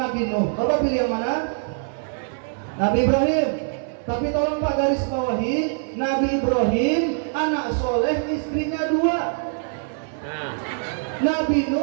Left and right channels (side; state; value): left; silent; 63 dB below the other